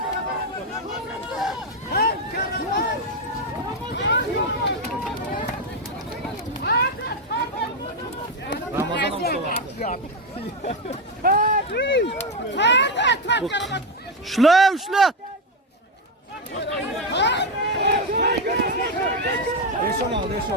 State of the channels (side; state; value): both; normal; correlation 0.08